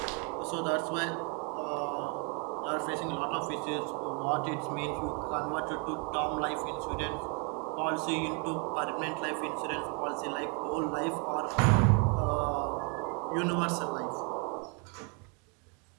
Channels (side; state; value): left; quieter; 35.1 dB